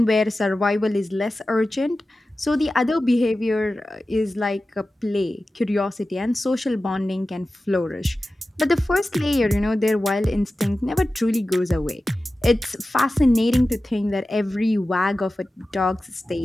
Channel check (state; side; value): normal; both; correlation 0.95